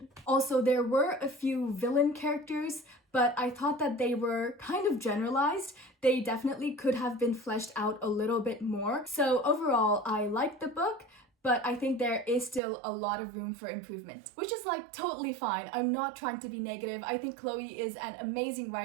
Also, there were a few villain characters, but I thought that they were kind of generalized. They definitely could have been fleshed out a little bit more. So overall, I liked the book, but I think there is still a lot of room for improvement, which is like totally fine. I'm not trying to be negative. I think Chloe is an amazing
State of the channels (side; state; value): left; drops out; at 12.6 s